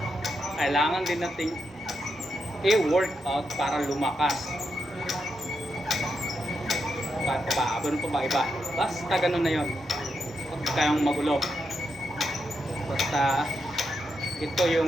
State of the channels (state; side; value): normal; both; correlation 0.84